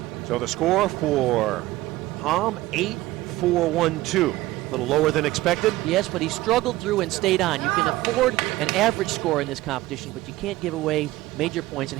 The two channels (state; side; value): quieter; left; 17.5 dB